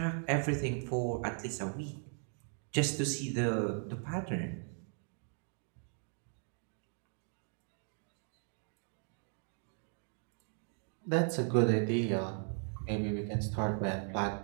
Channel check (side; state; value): left; silent; 53 dB below the other